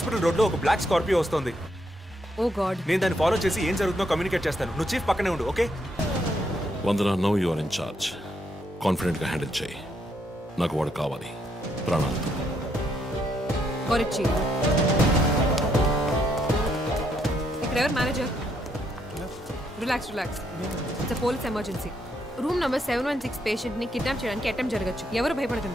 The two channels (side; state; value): both; normal; correlation 0.75